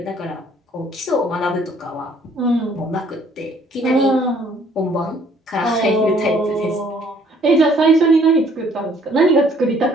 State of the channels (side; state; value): both; normal; correlation 0.60